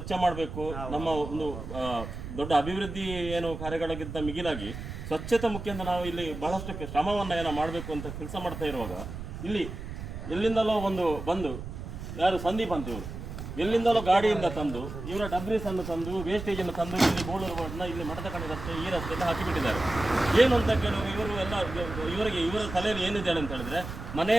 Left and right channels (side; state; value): right; noise; rumble, 9 dB below the sound